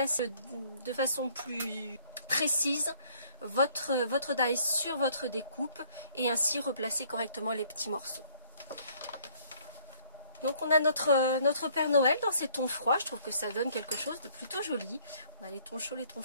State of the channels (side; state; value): both; inverted; correlation -0.60